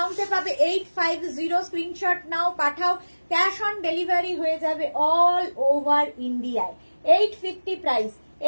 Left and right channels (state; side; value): inverted; both; correlation -1.00